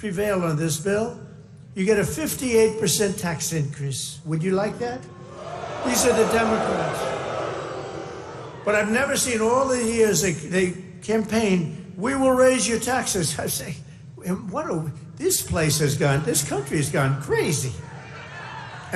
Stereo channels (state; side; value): identical; both; correlation 1.00